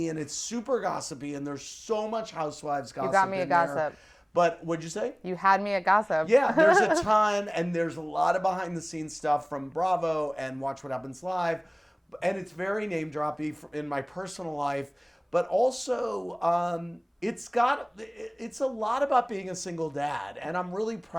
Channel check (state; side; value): identical; both; correlation 1.00